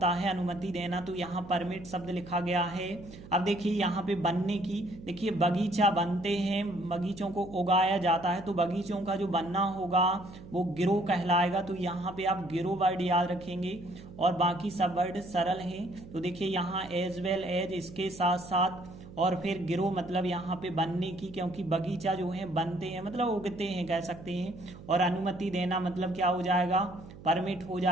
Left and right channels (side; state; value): right; noise; hum, 17 dB below the sound